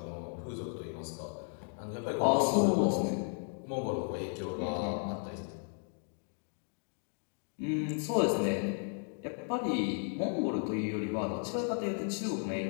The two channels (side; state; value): right; silent; 55 dB below the other